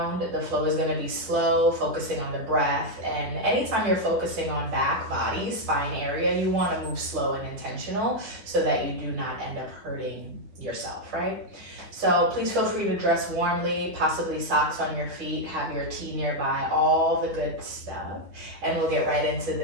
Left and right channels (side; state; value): left; late; 9.7 ms